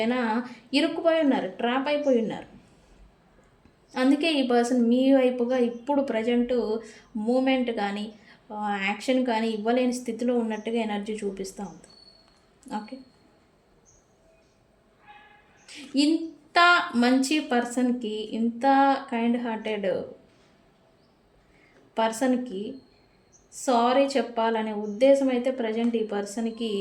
ఇరుక్కుపోయి ఉన్నారు, ట్రాప్ అయిపోయి ఉన్నారు. అందుకే ఈ పర్సన్ మీ వైపుగా ఇప్పుడు ప్రజెంట్ మూమెంట్ కానీ యాక్షన్ కానీ ఇవ్వలేని స్థితిలో ఉన్నట్టుగా ఎనర్జీ చూపిస్తూ ఉంది. ఓకే, ఇంత మంచి పర్సన్కి, ఇంత కైండ్ హార్టెడ్ పర్సన్కి సారీ చెప్పాలనే ఉద్దేశం అయితే ప్రజెంట్ ఈ పర్సన్కి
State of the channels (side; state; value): both; identical; correlation 1.00